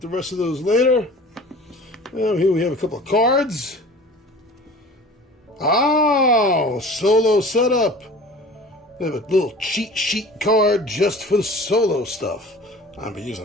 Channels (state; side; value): normal; both; correlation 0.42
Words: the rest of those later. Now here we have a couple of cards. Oh, solo setup. They have a little cheat sheet card just for the solo stuff. I've been